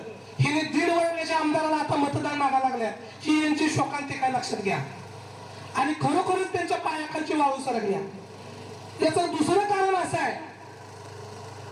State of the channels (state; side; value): identical; both; correlation 1.00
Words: हिने 1.5 वर्षाच्या आमदाराला आता मतदान मागायला लागल्या. ही यांची शोकांतिका लक्षात घ्या. आणि खरोखरच त्यांच्या पायाखालची वाळू सरकल्या. याचं दुसरं कारण असं आहे